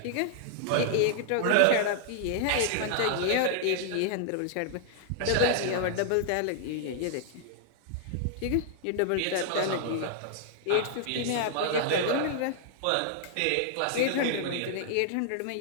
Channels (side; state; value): both; different; correlation -0.01